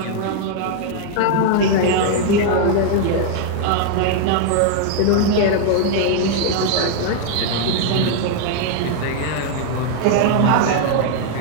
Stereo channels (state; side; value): different; both; correlation 0.00